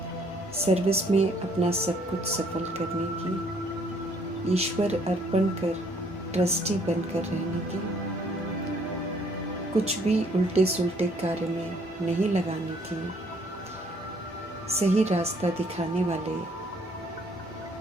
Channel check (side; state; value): both; normal; correlation 0.63